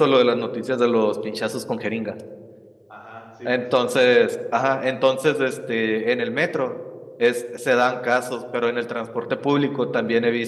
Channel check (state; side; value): identical; both; correlation 1.00